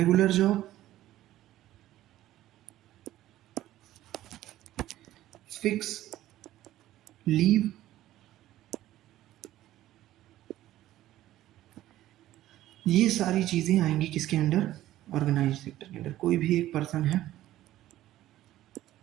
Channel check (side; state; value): left; quieter; 14.4 dB